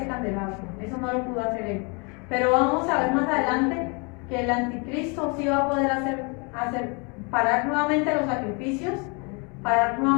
candelabro, eso no lo pudo hacer él. Pero vamos a ver más adelante que el anticristo sí va a poder hacer parar nuevamente los sacrificios, parar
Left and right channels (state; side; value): quieter; right; 32.7 dB